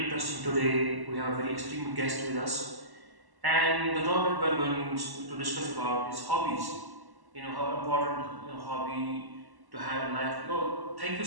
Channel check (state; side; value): late; left; 1.1 ms